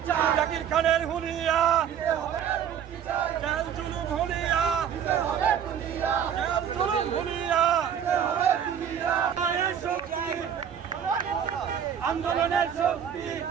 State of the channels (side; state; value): left; quieter; 8.5 dB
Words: জাকির খানের হুলিয়া জেল জুলুম হুলিয়া জেল জুলুম হুলিয়া আন্দোলনের শক্তি